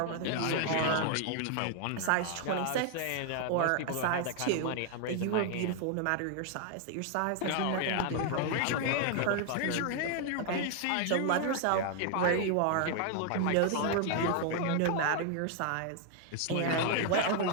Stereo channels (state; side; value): different; both; correlation 0.00